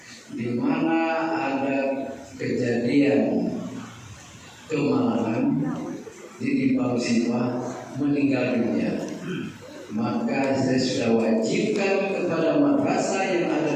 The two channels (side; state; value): both; identical; correlation 1.00